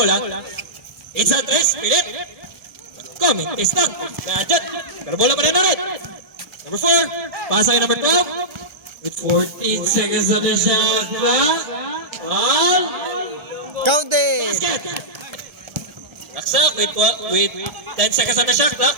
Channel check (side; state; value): left; late; 1.7 ms